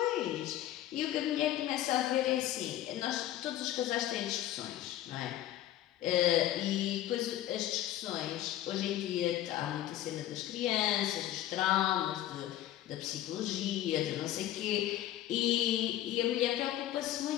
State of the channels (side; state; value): right; quieter; 13.1 dB